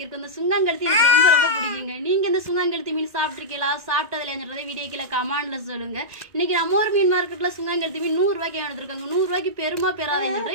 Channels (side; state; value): left; late; 1.9 ms